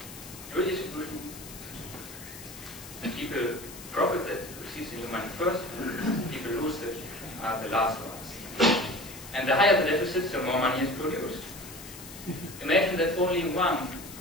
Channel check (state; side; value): noise; left; hiss, 14 dB below the sound